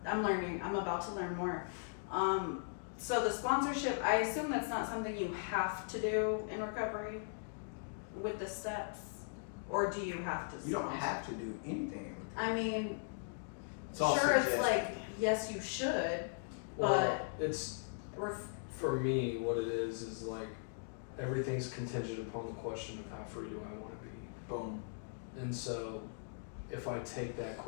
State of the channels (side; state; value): right; silent; digital silence